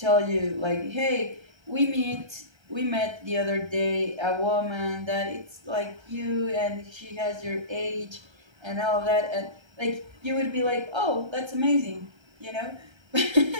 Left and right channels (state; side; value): late; left; 1.3 ms